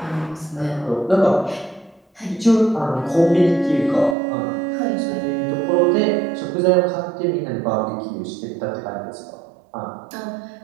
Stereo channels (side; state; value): left; drops out; at 4.2 s